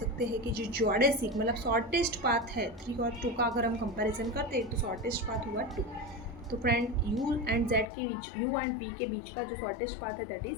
हैं कि जो जोडेसिक मतलब शॉर्टेस्ट पाथ है 3 और 2 का अगर हम कंपैरिजन करते हैं तो शॉर्टेस्ट पाथ हुआ 2। तो फ्रेंड, u एंड z के बीच, u एंड v के बीच का जो शॉर्टेस्ट पाथ है दैट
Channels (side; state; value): right; drops out; at 7.9 s